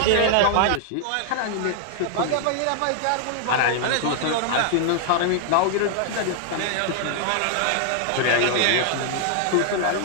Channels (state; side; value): different; both; correlation 0.00